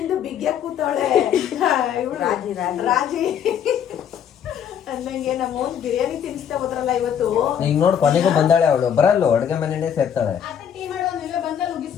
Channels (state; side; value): quieter; right; 8.7 dB